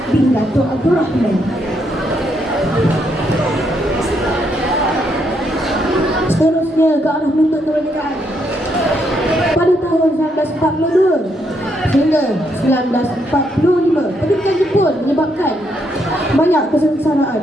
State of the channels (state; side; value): normal; both; correlation 0.76